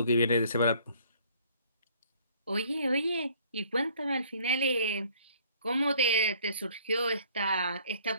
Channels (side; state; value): both; inverted; correlation -0.57